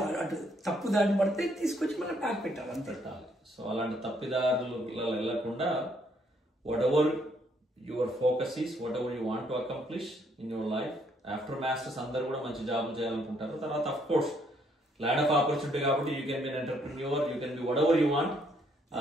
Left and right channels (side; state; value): both; normal; correlation 0.69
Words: అటు తప్పు దారిని పడితే తీసుకొచ్చి మనం ప్యాక్ పెట్టాలి అంతే. సో అలాంటి తప్పిదారులు వెళ్లకుండా whatever your focus is, whatever you want to accomplish in your life. After masters అందరూ కూడా మంచి జాబ్ చేయాలనుకుంటారు. తర్వాత of course land of opportunity కాబట్టి you can be entrepreneur, you can be whatever you want.